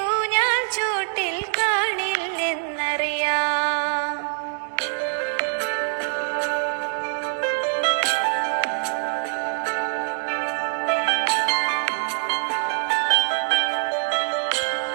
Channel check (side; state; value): left; silent; 62 dB below the other